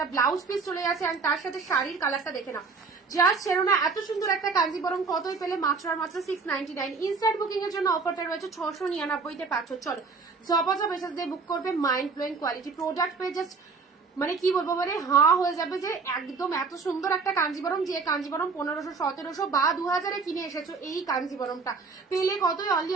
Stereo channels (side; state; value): left; quieter; 4.6 dB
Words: ব্লাউজ পিস চলে যাচ্ছে আর তার সাথে শাড়ির কালারটা দেখে নাও, জাস্ট ছেড়ো না। এত সুন্দর একটা কাঞ্জিবরম কতই পেলে, মাত্র আর মাত্র 699। ইনস্ট্যান্ট বুকিং এর জন্য অফারটা রয়েছে 699-তে পাচ্ছ। চলো জবজব এসএস দিয়ে বুক করবে, মাইন্ড ব্লোয়িং কোয়ালিটি প্রোডাক্ট পেয়ে জাস্ট মানে কি বলবো, মানে হাঁ হয়ে যাবে যে একদম এত সুন্দর একটা কাঞ্জিবরম, যে কাঞ্জিবরম 1500, 1700 বা 2000-এ কিনে এসেছো, এই কাঞ্জিবরমটা পেলে কতই, অনলি